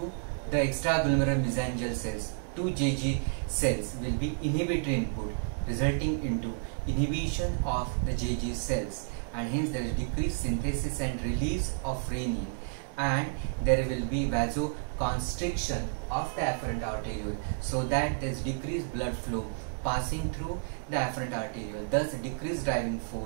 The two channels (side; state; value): left; silent; 57 dB below the other